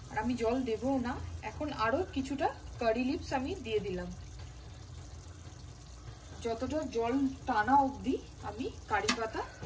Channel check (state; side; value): identical; both; correlation 1.00